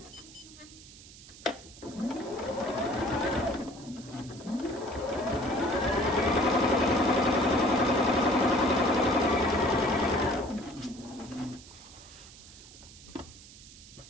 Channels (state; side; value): noise; right; hiss, 19 dB below the sound